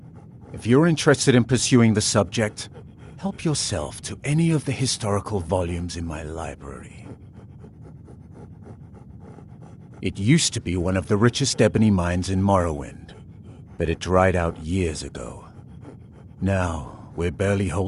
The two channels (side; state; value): both; identical; correlation 1.00